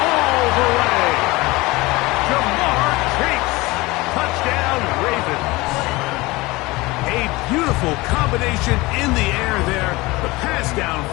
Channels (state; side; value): quieter; right; 21.7 dB